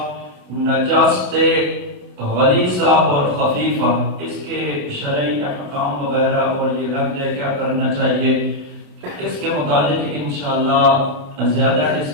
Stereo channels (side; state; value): left; late; 28 ms